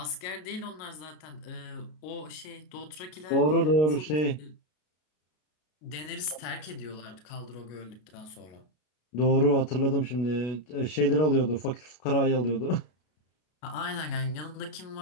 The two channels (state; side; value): late; right; 33 ms